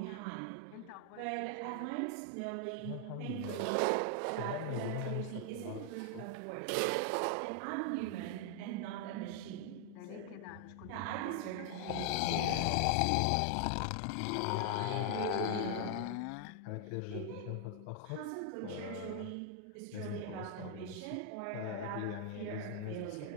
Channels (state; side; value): different; both; correlation 0.00